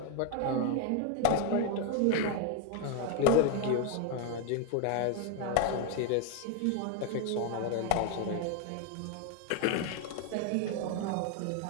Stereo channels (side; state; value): both; different; correlation 0.01